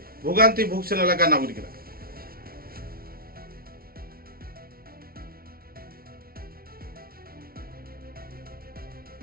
ভোগান্তি ভুগছেন এলাকার নাগরিকরা।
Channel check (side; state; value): left; late; 0.43 ms